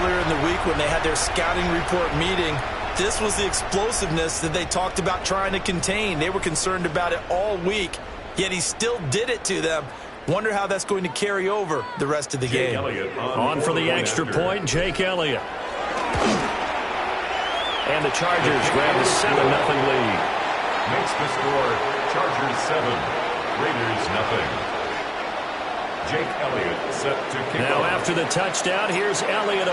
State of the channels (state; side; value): identical; both; correlation 1.00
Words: earlier in the week when they had their scouting report meeting, this was the explosiveness that they talked about trying to contain. They were concerned about it all week, yet he still did it to them. Wonder how that's going to carry over the rest of the game. On for the extra point, Jake Elliott. And the Chargers grab the 7-0 lead. Makes the score Chargers 7, Raiders 0. Jake Elliott set to kick Now off. after the touchdown, here's Elliott